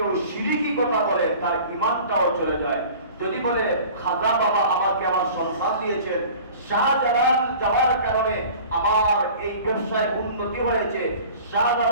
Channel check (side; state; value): both; inverted; correlation -0.44